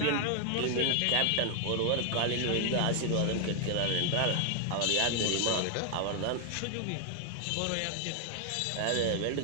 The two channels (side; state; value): both; different; correlation 0.00